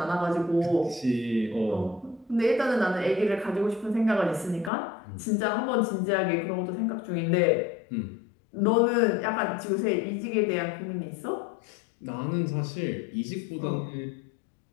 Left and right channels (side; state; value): right; drops out; at 4.7 s